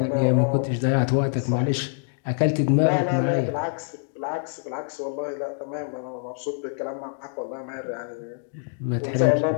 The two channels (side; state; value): right; silent; digital silence